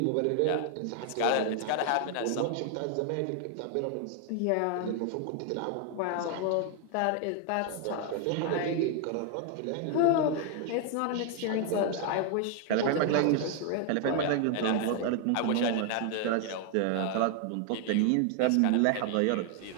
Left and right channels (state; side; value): different; both; correlation 0.00